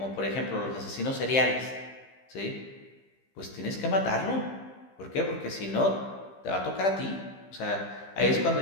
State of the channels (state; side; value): late; right; 15 ms